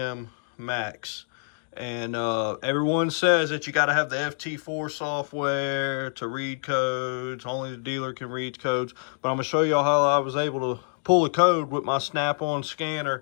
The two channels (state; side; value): silent; right; digital silence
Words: max. And everyone says that you got to have the FT4 software to read codes. Only the dealer can read codes. But I'm going to show y'all how I was able to pull the code with my snap-on